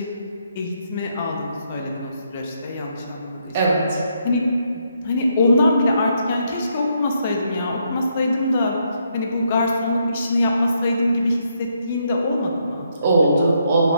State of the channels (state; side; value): inverted; both; correlation -0.76